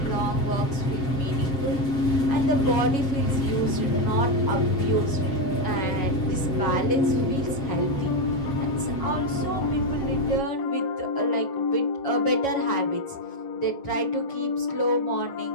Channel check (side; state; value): right; late; 7.2 ms